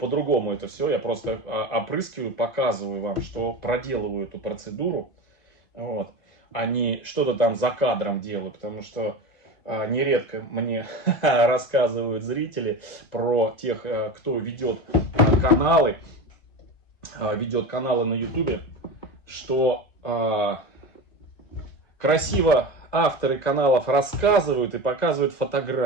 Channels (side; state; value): right; late; 2.5 ms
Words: это все. Я просто опрыскиваю, показываю вам, что проделываю эту процедуру. Вот. А не что-то там за кадром делаю, потому что нередко мне рассказывают зрители про тех, кто ведет каналы на YouTube, что красиво авторы каналов рассказывают и показывают